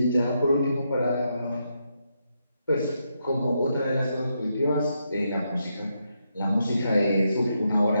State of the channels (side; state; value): both; inverted; correlation -0.81